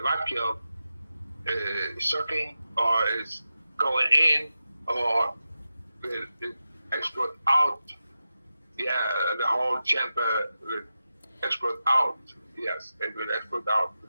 vacuum sucking or is going in or will it explode out? Yeah, the whole chamber will explode out. Yes, it will explode out,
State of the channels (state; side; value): inverted; both; correlation -0.92